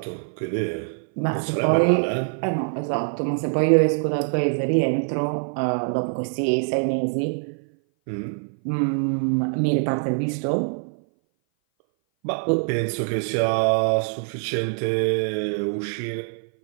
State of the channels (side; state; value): left; silent; 58 dB below the other